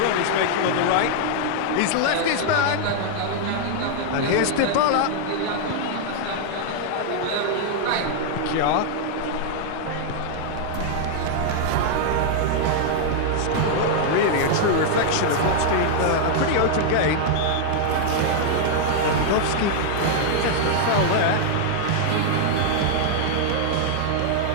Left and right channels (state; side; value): different; both; correlation 0.00